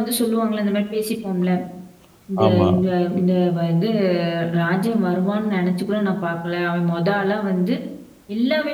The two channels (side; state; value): both; identical; correlation 1.00